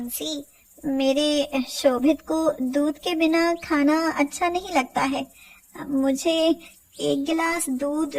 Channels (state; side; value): identical; both; correlation 1.00